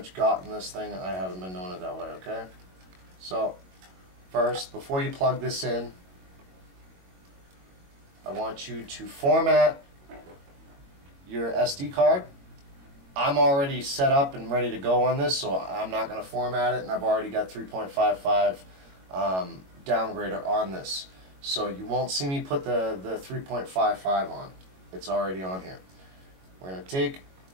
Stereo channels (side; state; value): left; late; 22 ms